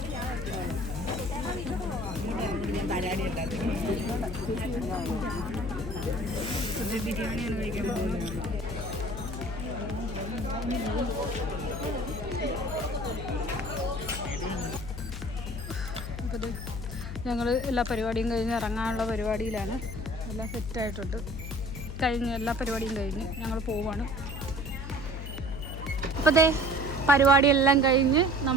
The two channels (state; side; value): noise; left; hum, 7 dB below the sound